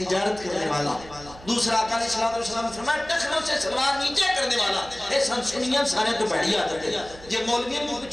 کرنے والا دوسرا آقا علیہ السلام نے فرمایا ٹخنوں سے سلوار نیچے کرنے والا اے سنسنیاں سارے تو بڑی عادت ہے یہ مولویوں میں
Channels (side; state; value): right; noise; hum, 19 dB below the sound